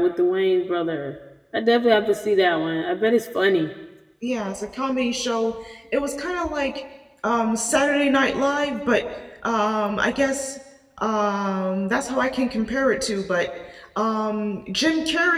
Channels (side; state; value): both; identical; correlation 1.00